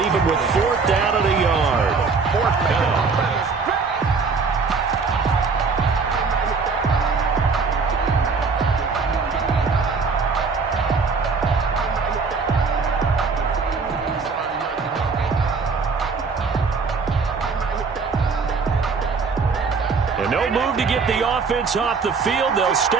him with fourth down and a yard. Fourth down. No move to get the offense off the field. They'll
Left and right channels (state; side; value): quieter; left; 4.8 dB